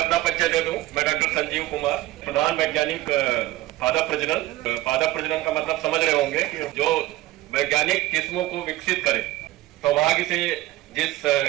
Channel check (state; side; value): quieter; left; 16.9 dB